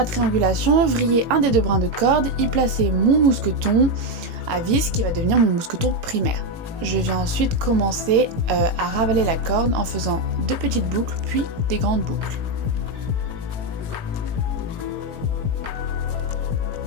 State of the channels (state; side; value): late; left; 18 ms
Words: triangulation, vriller un des deux brins de corde, y placer mon mousqueton à vis qui va devenir mon mousqueton primaire. Je viens ensuite commencer à ravaler la corde en faisant deux petites boucles puis des grandes boucles.